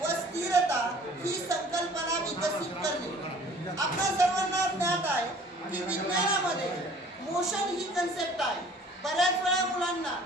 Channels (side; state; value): both; normal; correlation 0.51